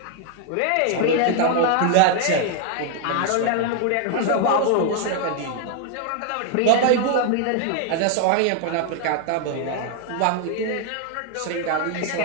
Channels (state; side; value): different; both; correlation 0.00